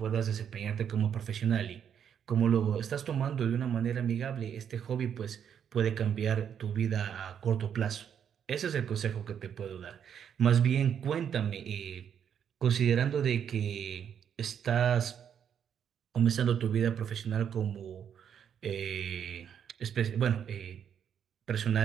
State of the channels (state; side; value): quieter; left; 8.4 dB